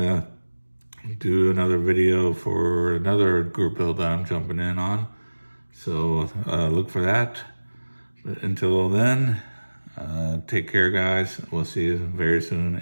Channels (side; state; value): both; inverted; correlation -1.00